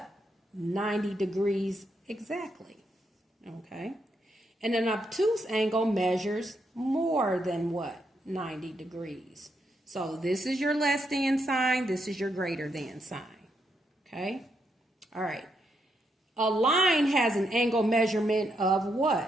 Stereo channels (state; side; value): normal; both; correlation 0.79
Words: 90 degrees exactly. Okay? And an obtuse angle measures more than what? 90 degrees. So this is your less than sign. This is your greater than sign. Okay? All right. A line has an angle measurement of